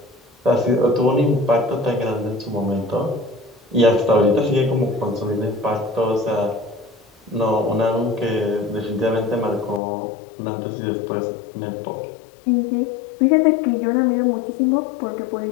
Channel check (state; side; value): drops out; right; at 9.8 s